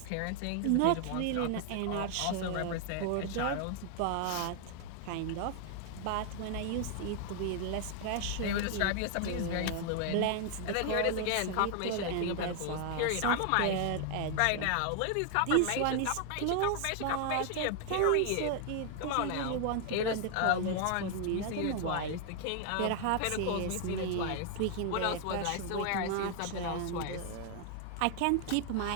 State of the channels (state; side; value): different; both; correlation 0.00